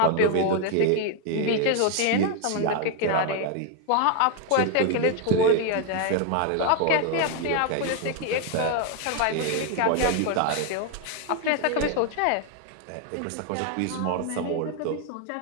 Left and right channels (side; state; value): both; different; correlation 0.01